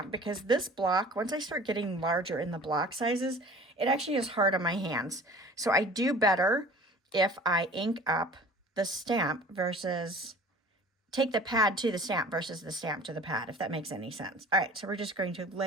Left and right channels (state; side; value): normal; both; correlation 0.44